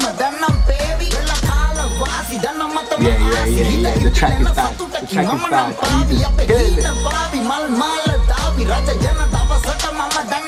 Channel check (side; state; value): both; identical; correlation 1.00